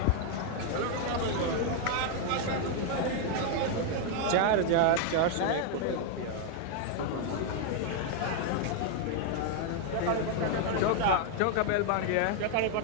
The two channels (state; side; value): different; both; correlation 0.00